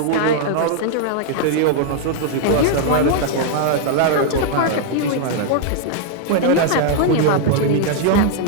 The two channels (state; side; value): different; both; correlation -0.01